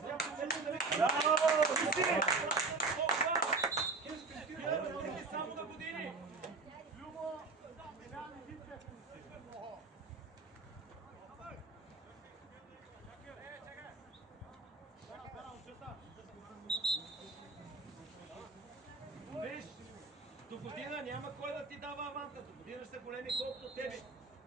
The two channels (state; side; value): quieter; left; 4.0 dB